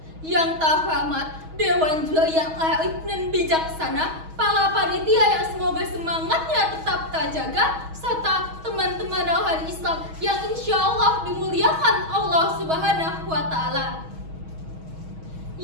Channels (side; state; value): left; late; 6.3 ms